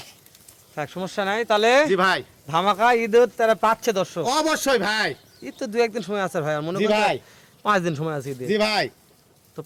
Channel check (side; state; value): both; identical; correlation 1.00